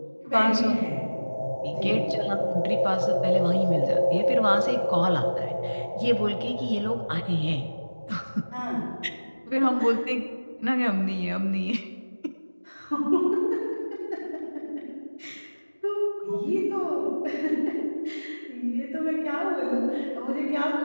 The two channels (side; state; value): both; inverted; correlation -1.00